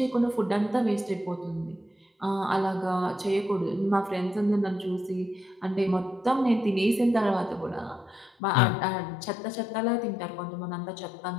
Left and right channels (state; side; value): drops out; right; at 8.3 s